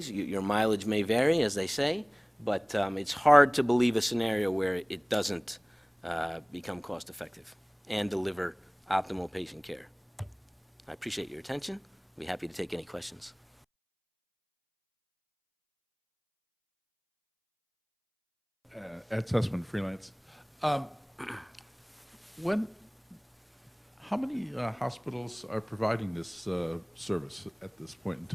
your mileage may vary, as they say, but it's hard to believe a scenario where it doesn't become cost-effective and deliver optimal patient care. I appreciate your attention. I'll be happy to take any questions. Ed Sussman, freelance. How many hospitals are providing this service at this point in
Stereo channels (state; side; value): identical; both; correlation 1.00